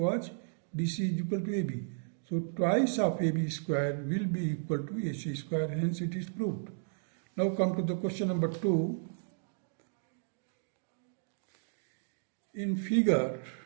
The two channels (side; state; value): left; silent; digital silence